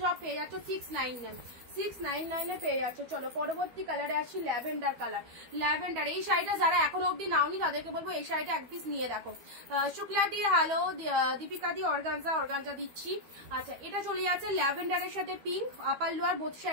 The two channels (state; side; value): late; left; 12 ms